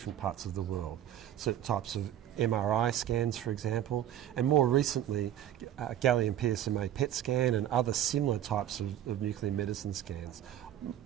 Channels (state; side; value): quieter; left; 11.3 dB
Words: parts of the world. Certain types of MRI scans, for example, and more recently gallium PSMA PET scan and other similar types of nuclear medicine scans,